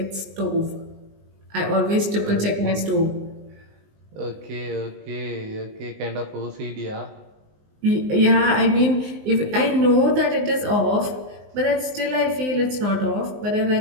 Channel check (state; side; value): late; left; 19 ms